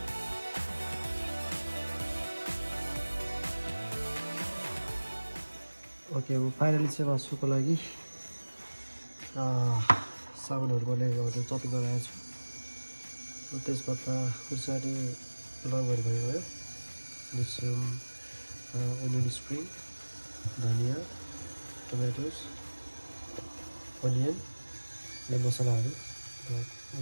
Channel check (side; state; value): both; inverted; correlation -1.00